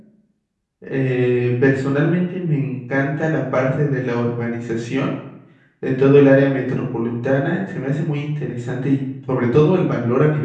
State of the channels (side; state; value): both; identical; correlation 1.00